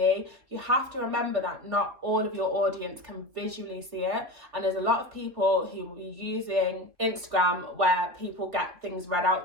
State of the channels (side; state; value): left; late; 3.1 ms